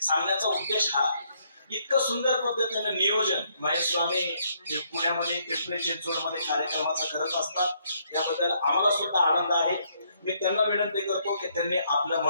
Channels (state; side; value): inverted; both; correlation -0.71